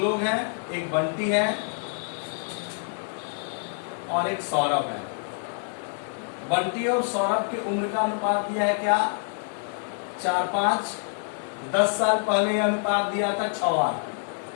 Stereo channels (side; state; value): right; silent; 60 dB below the other